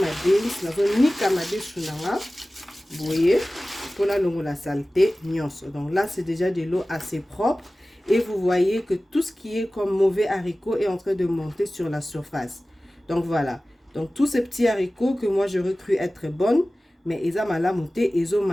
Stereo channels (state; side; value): normal; both; correlation 0.97